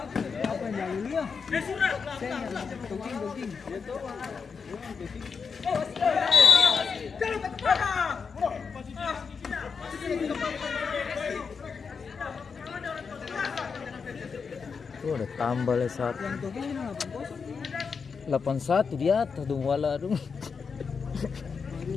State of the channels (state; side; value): quieter; right; 5.6 dB